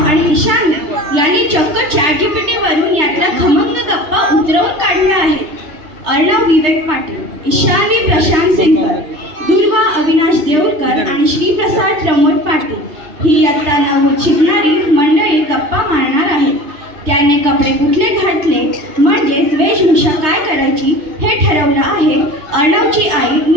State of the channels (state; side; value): late; left; 3.3 ms